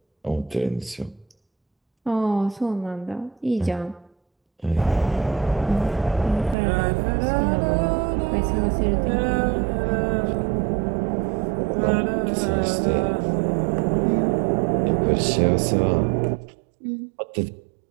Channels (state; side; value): drops out; left; at 6.6 s